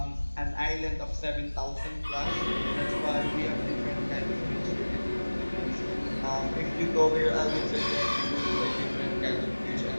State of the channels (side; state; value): both; inverted; correlation -1.00